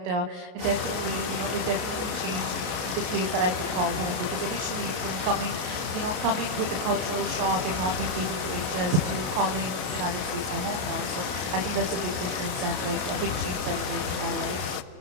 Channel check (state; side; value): late; left; 32 ms